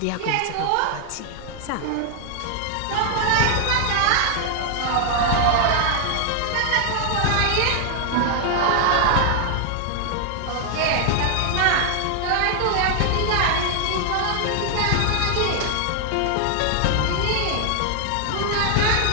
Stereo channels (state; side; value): different; both; correlation 0.00